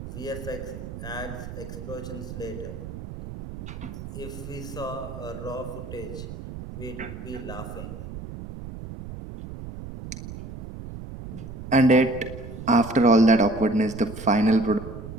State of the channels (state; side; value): noise; right; rumble, 10 dB below the sound